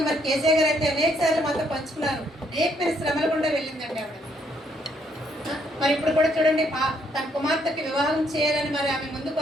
కేసీఆర్ గారు అయితే అనేక సార్లు మాతో పంచుకున్నారు. అనేకమైన శ్రమలు కూడా వెళ్ళిందండి ఆవిడ. మరి ఇప్పుడు కూడా చూడండి, తన కుమార్తెకి వివాహం చేయాలని ఆమె ముందుకు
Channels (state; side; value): normal; both; correlation 0.71